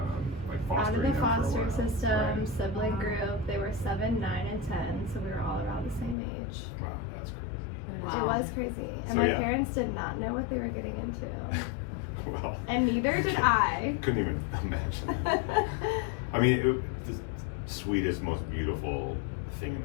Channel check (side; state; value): right; drops out; at 6.2 s